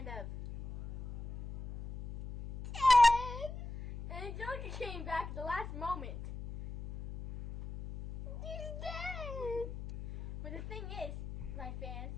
of dead. And Angelica came back at the last moment. He's dead. But the thing is, my fans,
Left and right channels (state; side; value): noise; left; hum, 9 dB below the sound